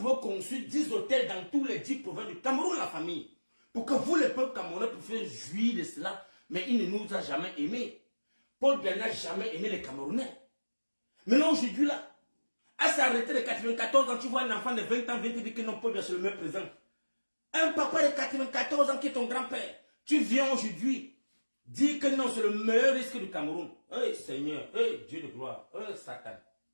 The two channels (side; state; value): both; inverted; correlation -1.00